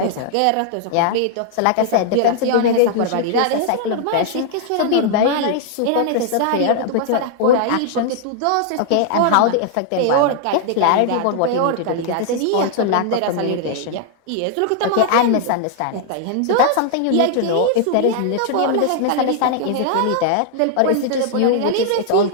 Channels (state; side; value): different; both; correlation -0.01